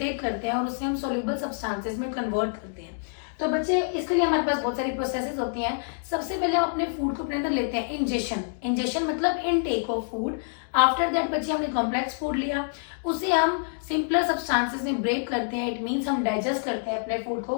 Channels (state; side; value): silent; right; digital silence